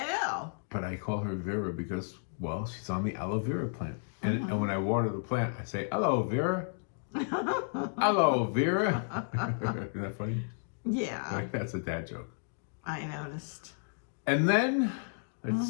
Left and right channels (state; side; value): silent; right; digital silence